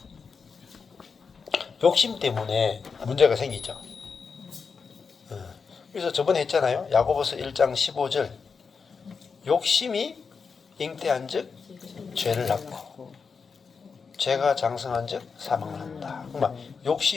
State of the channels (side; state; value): right; quieter; 5.4 dB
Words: 욕심 때문에 문제가 생기죠. 그래서 저번에 했잖아요. 야고보서 1장 15절 욕심이 잉태한 즉 죄를 낳고 죄가 장성한 즉 사망을 한다. 그러니까